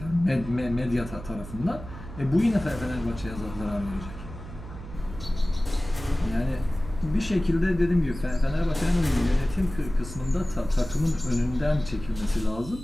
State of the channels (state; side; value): noise; right; hum, 12 dB below the sound